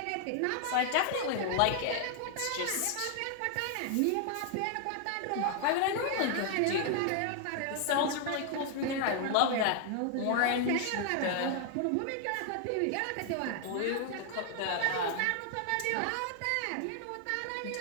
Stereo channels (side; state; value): both; different; correlation 0.00